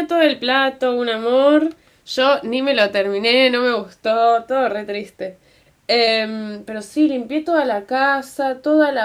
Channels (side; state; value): both; identical; correlation 1.00